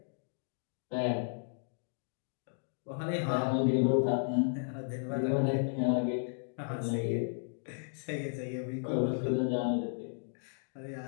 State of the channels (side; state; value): right; silent; digital silence